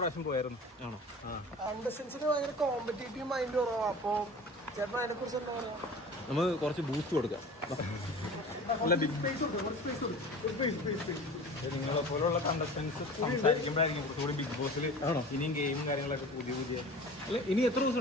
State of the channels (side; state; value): both; normal; correlation 0.39